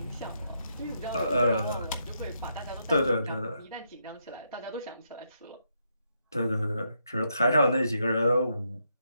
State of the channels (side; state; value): both; inverted; correlation -0.79